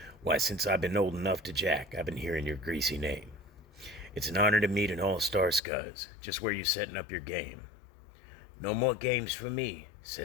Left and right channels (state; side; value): drops out; right; at 5.6 s